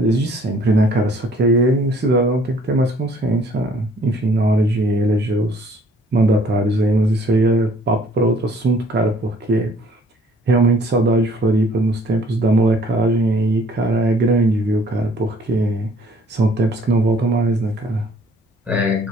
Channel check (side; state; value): both; normal; correlation 0.58